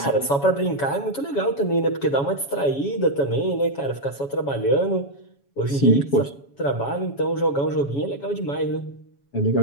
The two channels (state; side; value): late; right; 7.2 ms